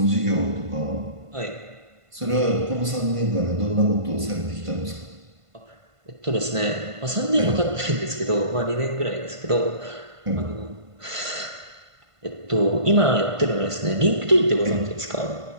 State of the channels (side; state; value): left; late; 1.5 ms